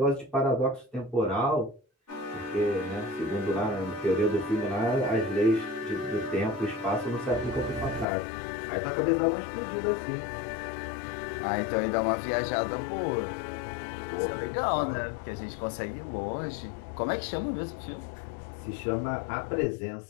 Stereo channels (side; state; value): right; drops out; at 8.1 s